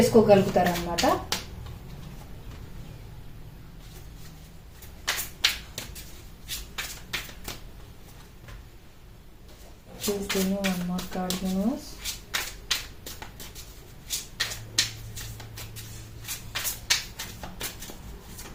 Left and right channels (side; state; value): both; identical; correlation 1.00